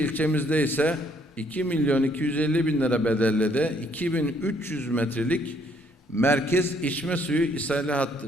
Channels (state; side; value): normal; both; correlation 0.67